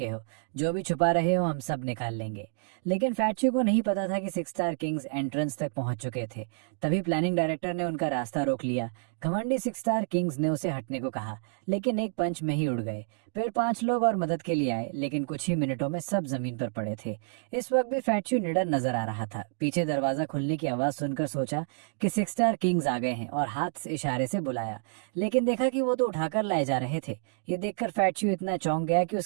हो, जो भी छुपा रहे हो हम सब निकाल लेंगे। लेकिन फैटशू को नहीं पता था कि 6 स्टार किंग्स एंट्रेंस तक पहुंच चुके थे। तभी प्लानिंग डायरेक्टर ने उनका रास्ता रोक लिया। घमंडी 6 स्टार किंग्स ने उसे हटने को कहा, लेकिन एक पंच में ही उड़ गए। फिर 5 लोग और मदद के लिए आए, लेकिन कुछ ही मिनटों में सब जमीन पर पड़े थे। इस वक्त भी फैटशू निडर नजर आ रहा था। पीछे दरवाजा खुलने की आवाज सुनकर सोचा कि 6 स्टार किंग्स आ गए हैं और हाथ से इशारे से बुलाया, लेकिन देखा कि वो तो उठाकर लाए जा रहे थे। ये देखकर फैटशू इतना चौंक गया कि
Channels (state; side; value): silent; left; digital silence